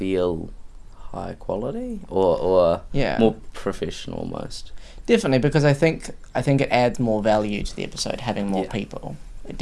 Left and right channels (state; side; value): identical; both; correlation 1.00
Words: high quality or Yeah, more professional almost. definitely, because I think it adds more value to the episode having more Yeah. people. It